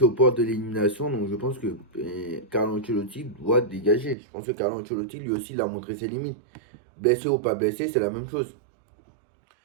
es au port de l'élimination. Donc je pense que Carlo Ancelotti doit dégager. Je pense que Carlo Ancelotti lui aussi il a montré ses limites. Blessé ou pas blessé, c'est la même chose.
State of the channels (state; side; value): drops out; left; at 4.2 s